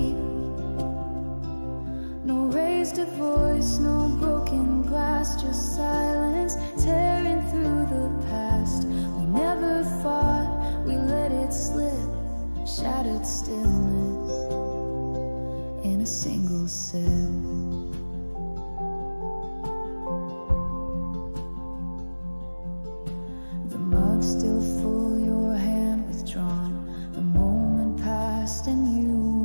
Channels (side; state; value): both; inverted; correlation -1.00